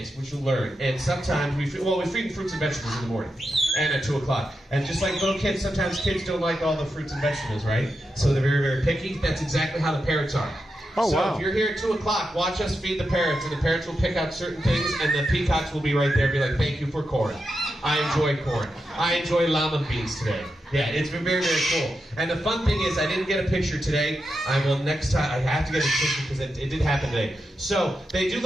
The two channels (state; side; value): normal; both; correlation 0.87